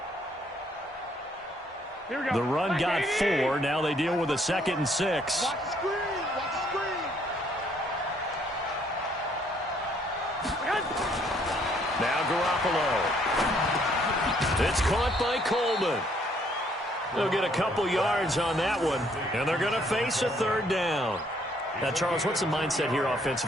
The run got 4. Now they deal with a 2nd and 6. Watch the screen. Watch the screen. Now Garoppolo. It's caught by Coleman. They'll get a couple yards on that one, and they're going to face a 3rd down. Now, Charles, what's the mindset here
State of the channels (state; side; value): normal; both; correlation 0.66